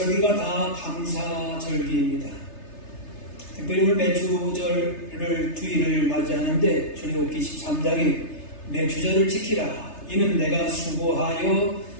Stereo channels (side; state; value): right; late; 3.3 ms